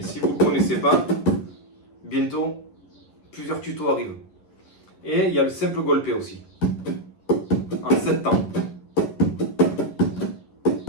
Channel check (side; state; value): right; late; 11 ms